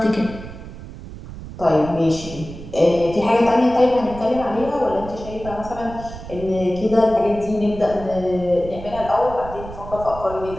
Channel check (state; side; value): noise; right; rumble, 13 dB below the sound